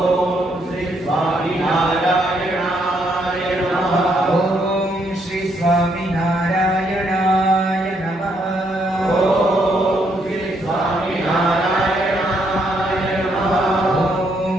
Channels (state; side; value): normal; both; correlation 0.73